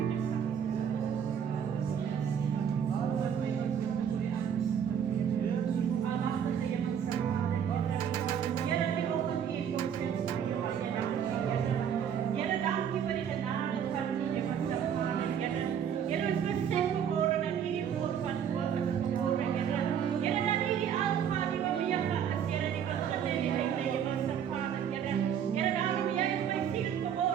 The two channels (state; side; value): quieter; left; 8.3 dB